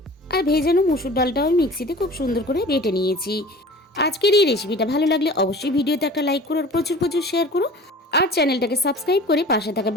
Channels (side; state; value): both; normal; correlation 0.42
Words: আর ভেজানো মুসুর ডালটাও আমি মিক্সিতে খুব সুন্দর করে বেটে নিয়েছি। আজকের এই রেসিপিটা ভালো লাগলে অবশ্যই ভিডিওতে একটা লাইক করো, আর প্রচুর প্রচুর শেয়ার করো। আর চ্যানেলটাকে সাবস্ক্রাইব করে পাশে থাকা